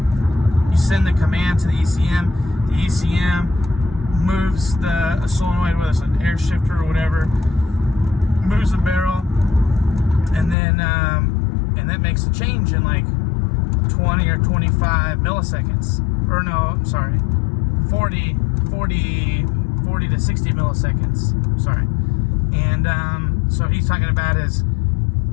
send the command to the ECM. The ECM moves the solenoid, whether it's an air shifter or whatever, moves the barrel, and then and that makes a change in like 20 or 25 milliseconds. Or no, I'm sorry, 40 to 60 milliseconds. Sorry. And so he's talking about is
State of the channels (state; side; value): drops out; right; at 10.6 s